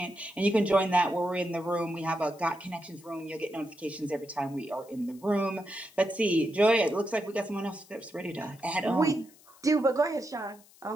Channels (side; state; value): left; noise; hiss, 26 dB below the sound